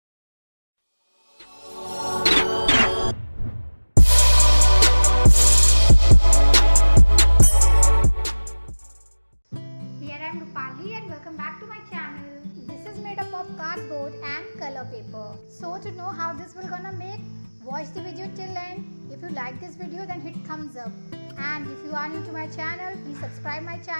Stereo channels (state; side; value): inverted; both; correlation -1.00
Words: Here I am Rupali and welcome back to my channel. This is made up of cardboard and color paper. So to know how this will gonna make, watch the video till end. If you like this video then hit thumbs up. And if you are new to my channel, please subscribe my